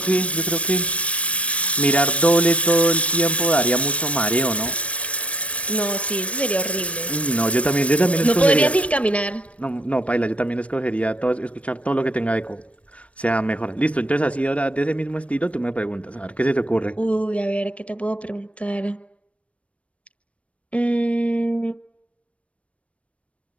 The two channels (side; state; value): right; late; 0.063 ms